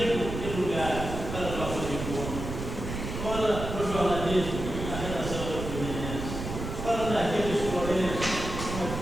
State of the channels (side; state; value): right; noise; rumble, 6 dB below the sound